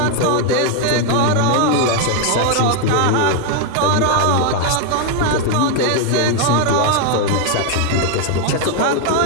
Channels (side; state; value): both; different; correlation 0.00